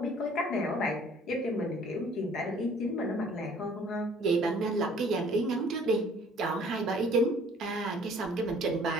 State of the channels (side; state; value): both; normal; correlation 0.55